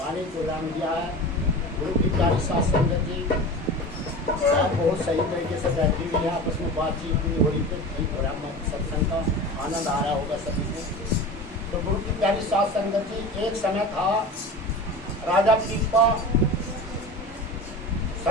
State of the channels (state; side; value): normal; both; correlation 0.33